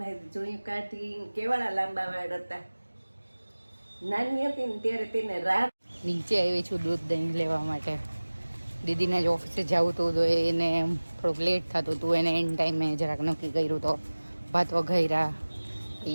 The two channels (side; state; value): both; inverted; correlation -1.00